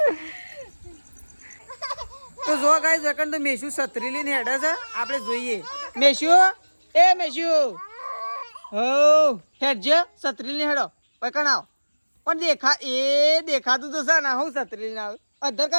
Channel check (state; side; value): inverted; both; correlation -1.00